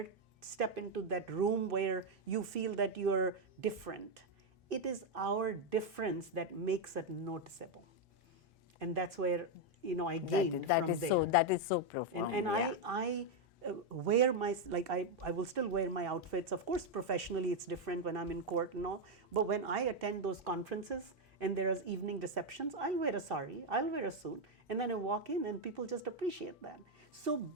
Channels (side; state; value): both; normal; correlation 0.03